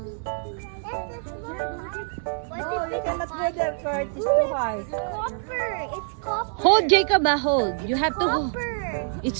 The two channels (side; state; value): left; silent; digital silence